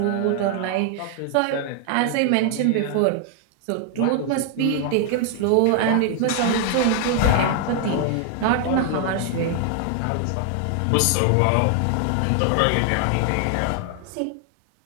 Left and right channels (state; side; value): different; both; correlation 0.00